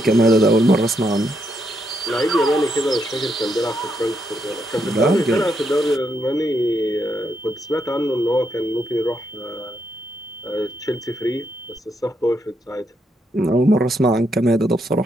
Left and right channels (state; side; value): normal; both; correlation 0.79